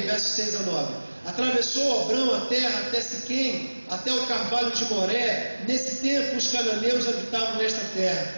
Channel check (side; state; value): both; inverted; correlation -1.00